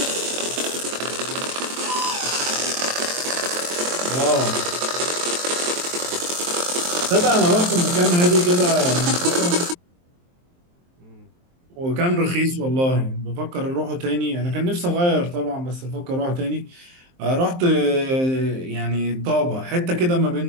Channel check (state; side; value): late; left; 23 ms